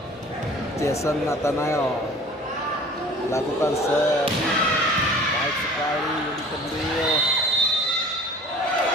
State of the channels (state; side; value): normal; both; correlation 0.46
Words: Jason Nathanael lakukan serve baik sekali di Kendil.